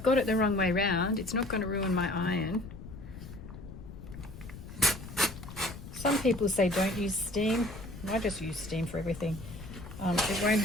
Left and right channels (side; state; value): left; noise; rumble, 13 dB below the sound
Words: got it the wrong way round, it's not going to ruin my iron. Some people say don't use steam. I just use steam for everything. It won't